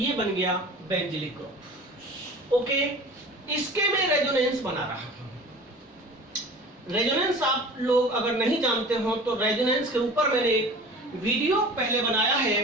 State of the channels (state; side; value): normal; both; correlation 0.40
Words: बन गया बेंजिलिक ग्रुप। ओके, इसके मैं रेजोनेंस बना रहा हूं। रेजोनेंस आप लोग अगर नहीं जानते हो तो रेजोनेंस के ऊपर मैंने एक वीडियो पहले बनाया